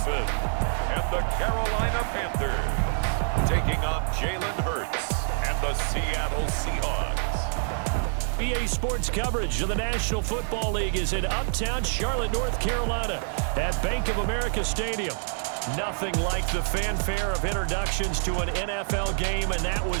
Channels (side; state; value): left; silent; 60 dB below the other